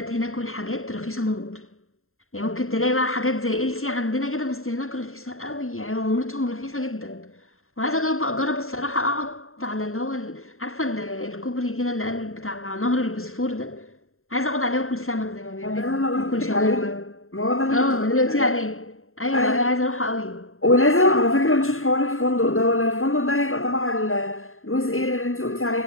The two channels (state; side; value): late; right; 0.62 ms